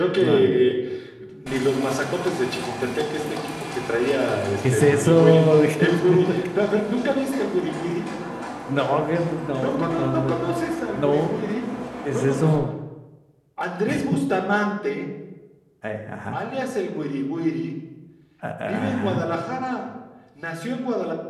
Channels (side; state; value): both; identical; correlation 1.00